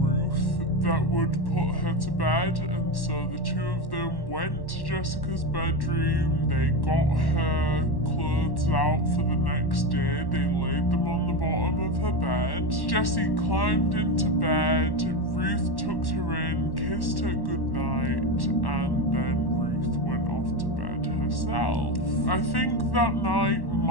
that would put her to bed, and so the two of them went to Jessica's bedroom. They got her clothes out for the next day. They laid them on the bottom of her bed. Jessie climbed into bed. Ruth tucked her in, kissed her goodnight, and then Ruth went off to bed herself. I think that night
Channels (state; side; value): late; right; 1.1 ms